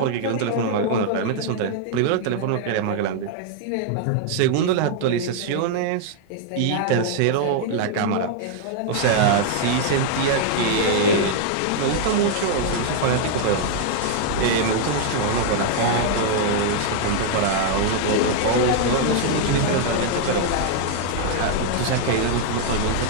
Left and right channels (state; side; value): different; both; correlation -0.01